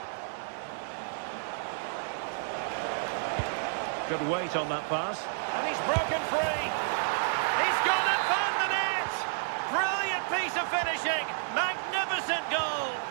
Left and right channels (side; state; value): left; silent; digital silence